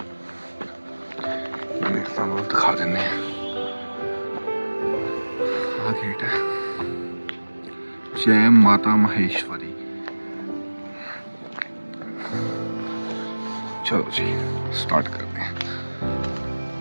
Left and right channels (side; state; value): both; inverted; correlation -1.00